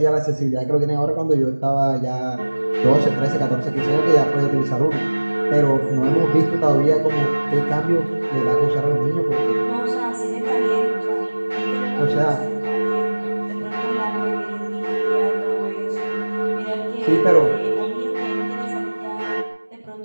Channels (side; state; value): both; inverted; correlation -1.00